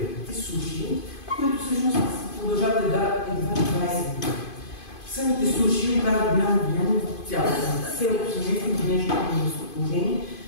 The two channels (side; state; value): right; late; 2.5 ms